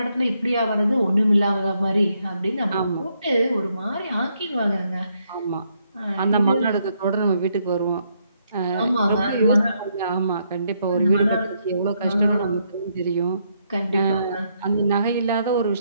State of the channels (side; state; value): both; inverted; correlation -0.75